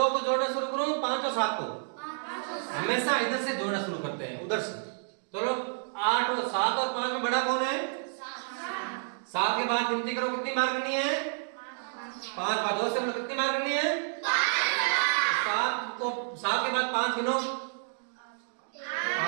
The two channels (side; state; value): left; silent; digital silence